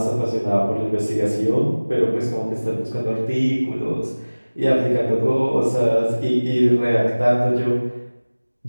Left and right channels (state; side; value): inverted; both; correlation -1.00